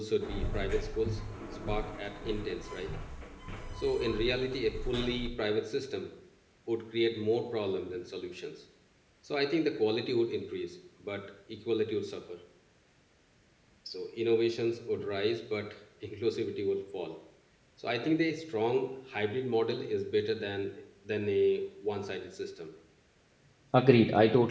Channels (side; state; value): both; identical; correlation 1.00